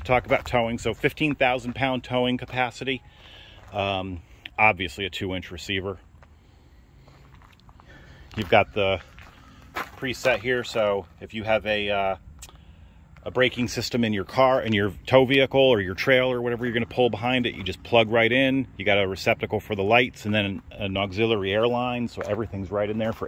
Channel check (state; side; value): identical; both; correlation 1.00